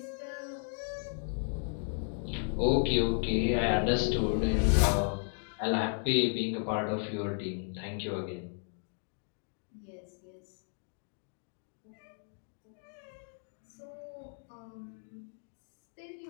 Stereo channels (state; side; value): silent; right; 55 dB below the other